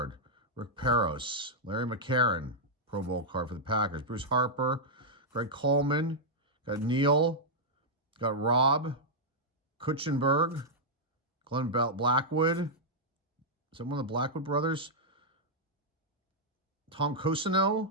Rick Peros. Larry McCarron, Pro Bowl card for the Packers. Bruce Harper. Greg Coleman. Got Neil. Got Rob. Kutchenberg. Glenn Blackwood. Is that one of the Blackwood brothers? Tom Cosino.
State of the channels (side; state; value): both; normal; correlation -0.06